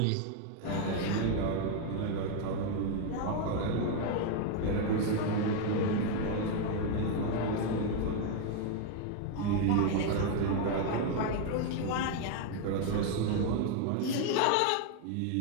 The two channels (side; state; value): both; different; correlation 0.01